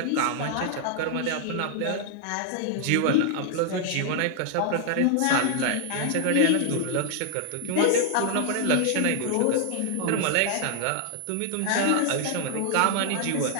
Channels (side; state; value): both; different; correlation 0.00